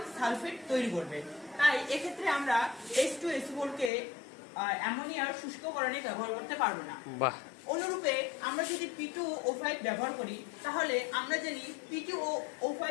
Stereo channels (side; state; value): right; drops out; at 3.9 s